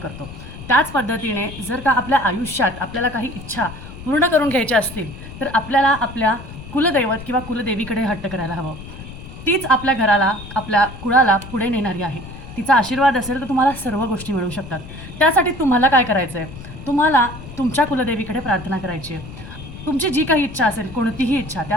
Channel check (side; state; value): left; noise; rumble, 13 dB below the sound